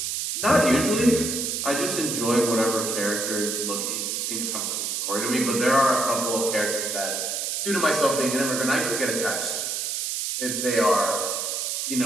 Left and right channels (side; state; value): right; noise; hiss, 2 dB below the sound